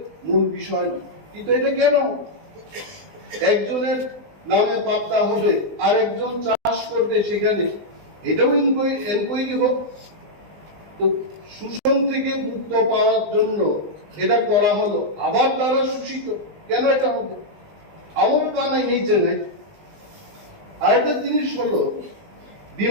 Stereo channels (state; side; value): late; left; 19 ms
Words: মূল বিষয় না। কিন্তু এটা কেন একজনের নামে পাত্তা হবে আর একজন চাষ করবে সেখানে, এটাও এনকোয়ারি হোক। তো শোষণ থেকে মুক্ত পাওয়ার জন্য এটা করা হলো, আবার তারা শোষিত কেন এটা হবে? আমার পানা এই জায়গায় আরেকটা জিনিস হলো,